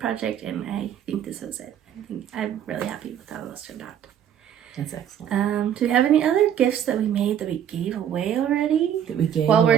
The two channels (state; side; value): quieter; left; 9.6 dB